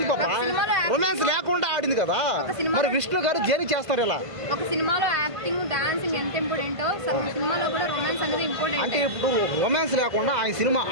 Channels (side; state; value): left; late; 1.5 ms